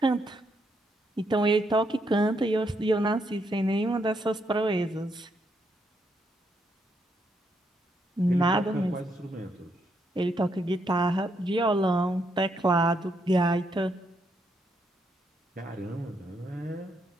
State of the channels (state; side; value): normal; both; correlation 0.77